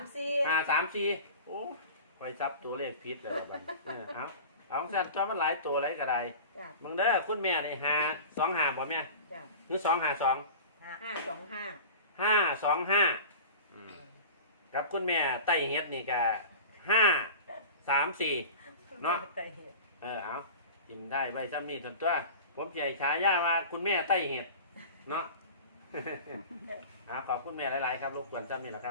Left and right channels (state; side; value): inverted; both; correlation -0.35